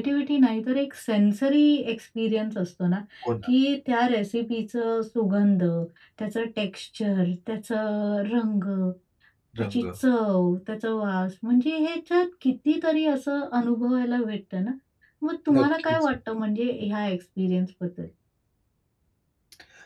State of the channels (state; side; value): identical; both; correlation 1.00